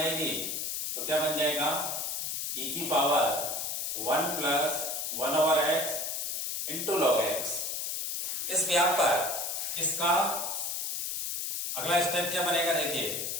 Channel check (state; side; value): noise; left; hiss, 2 dB below the sound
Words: तो क्या बन जाएगा e की power 1 plus 1 over x into log x। इस व्याप पर इसका अगला स्टेप क्या बनेगा, देखिए